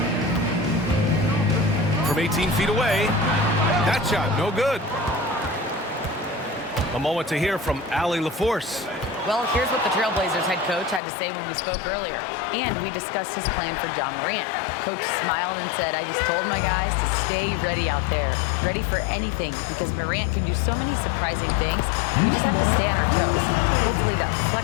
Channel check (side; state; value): right; drops out; at 11.0 s